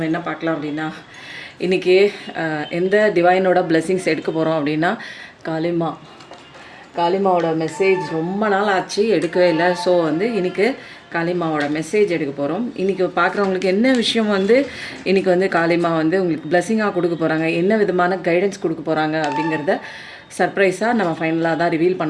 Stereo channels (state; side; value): identical; both; correlation 1.00